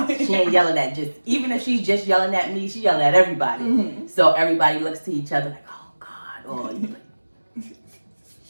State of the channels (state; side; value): inverted; both; correlation -1.00